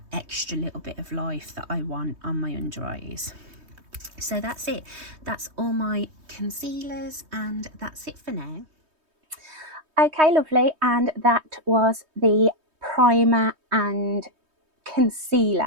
extra little bit of life that I want on my under eyes. So that's it. That's all my concealers, and that's it for now. Okay, lovely, and that was the primer and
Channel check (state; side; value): late; left; 3.2 ms